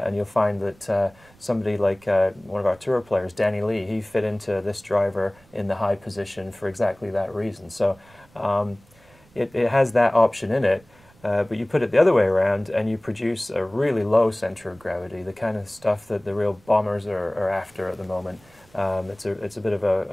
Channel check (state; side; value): noise; right; rumble, 29 dB below the sound